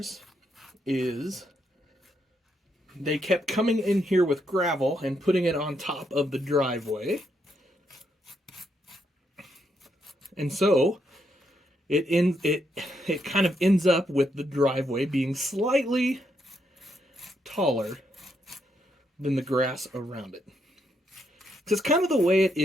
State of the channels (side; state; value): both; normal; correlation 0.78